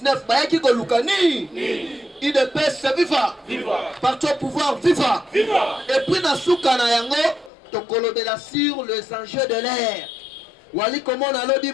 bah qui go lukani. IDPS viva. Parti au pouvoir viva. Et puis na souka na yango, tokolo de la sur les enjeux de l'air. Wali comment on a lobby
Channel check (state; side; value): drops out; right; at 7.5 s